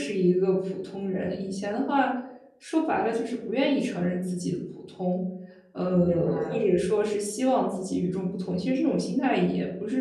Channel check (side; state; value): both; identical; correlation 1.00